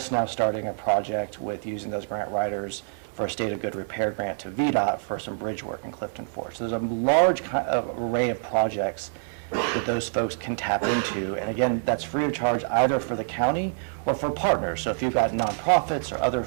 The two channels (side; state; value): left; silent; digital silence